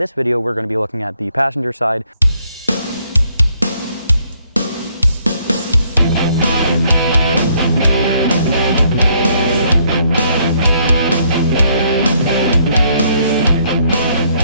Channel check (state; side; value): inverted; both; correlation -0.68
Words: video, we're going to be looking at the passenger side.